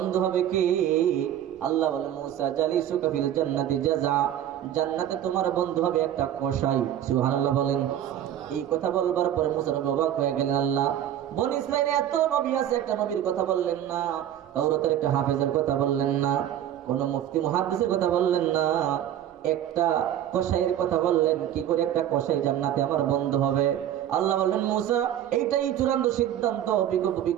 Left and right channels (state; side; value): quieter; left; 11.1 dB